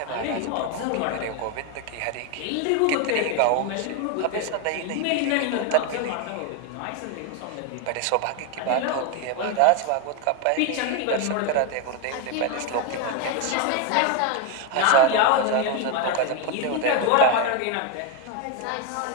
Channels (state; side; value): different; both; correlation 0.02